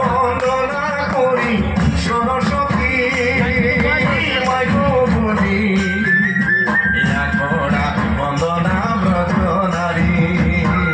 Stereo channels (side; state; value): both; identical; correlation 1.00